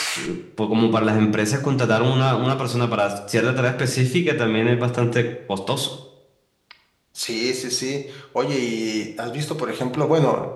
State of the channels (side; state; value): both; identical; correlation 1.00